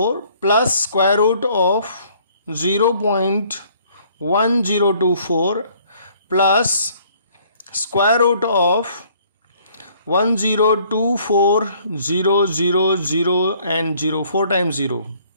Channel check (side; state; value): both; inverted; correlation -0.60